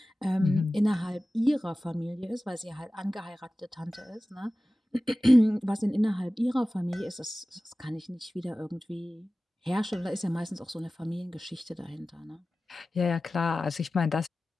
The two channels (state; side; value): normal; both; correlation 0.96